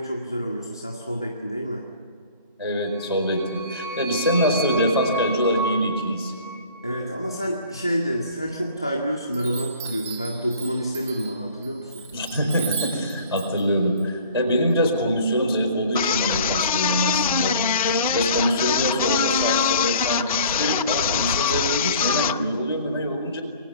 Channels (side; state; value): both; inverted; correlation -0.49